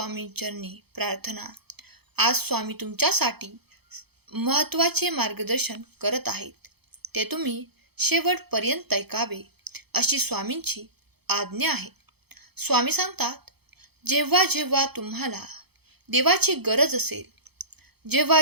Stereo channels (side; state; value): left; late; 0.97 ms